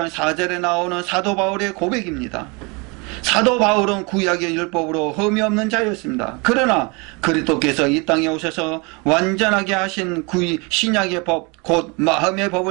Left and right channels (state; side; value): quieter; left; 29.4 dB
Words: 4절에 나오는 사도 바울의 고백입니다. 사도 바울은 구약의 율법으로 흠이 없는 자였습니다. 그러나 그리스도께서 이 땅에 오셔서 완전하게 하신 신약의 법 곧 마음의